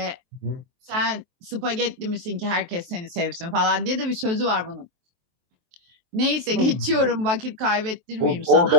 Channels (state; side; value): late; left; 23 ms